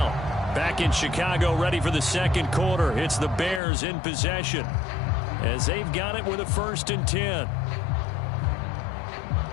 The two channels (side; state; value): right; drops out; at 3.6 s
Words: Back in Chicago, ready for the second quarter. It's the Bears in possession as they've got it with a 1st and 10.